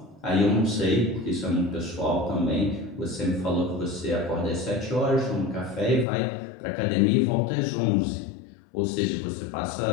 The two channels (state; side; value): drops out; right; at 6.1 s